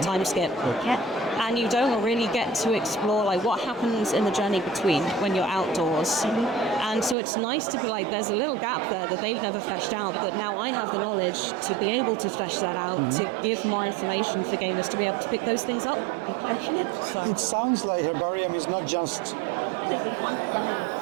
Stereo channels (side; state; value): left; drops out; at 7.2 s